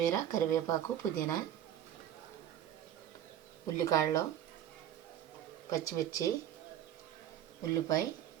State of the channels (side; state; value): left; quieter; 11.0 dB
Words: కరివేపాకు, పుదీనా, ఉల్లికాడలు, పచ్చిమిర్చి, ఉల్లిపాయ,